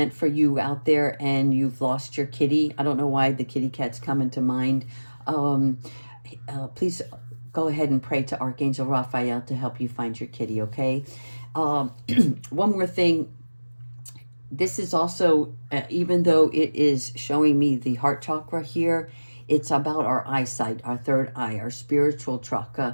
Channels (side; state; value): both; inverted; correlation -1.00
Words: for you out there and you've lost your kitty. I don't know why the kitty cat's come into mind. Please go ahead and pray to Archangel Raphael to help you find your kitty, okay? One more thing. This is also, even though it is showing me the heart chakra here, it's about our eyesight, our third eye, our spiritual